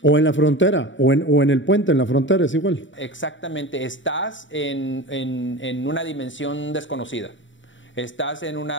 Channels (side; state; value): right; late; 0.55 ms